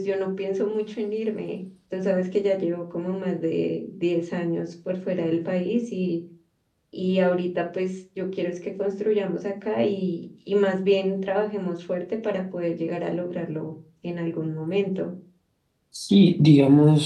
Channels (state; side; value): identical; both; correlation 1.00